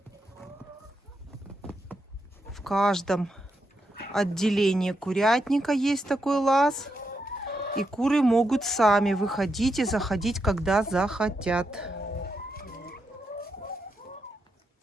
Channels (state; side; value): normal; both; correlation 0.83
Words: В каждом отделении курятника есть такой лаз. И куры могут сами выходить и заходить, когда захотят.